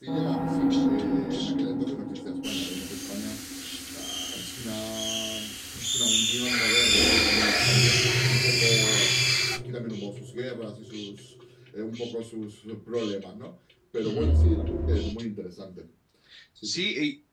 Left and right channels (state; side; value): identical; both; correlation 1.00